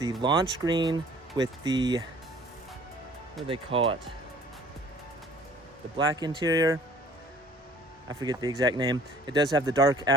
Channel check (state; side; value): normal; both; correlation 0.52